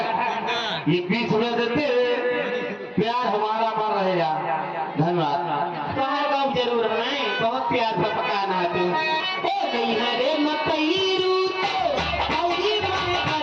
ये 20 रुपए देते, प्यार हमारा बन रहेगा। धन्यवाद। तुम्हारे गाँव जरूर है, बहुत प्यार से पकाना है तू। ओ नहीं है रे मकई रूते भौजी मोरे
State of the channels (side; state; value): both; identical; correlation 1.00